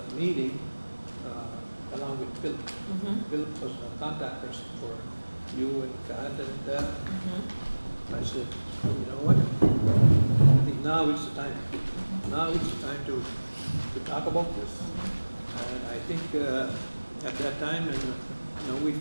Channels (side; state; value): both; inverted; correlation -1.00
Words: meeting, along with Philip, Philip was a contact person for you and Kat and I said, you know what? I think now is the time. Now is the time to talk about this. And I think at that time, and we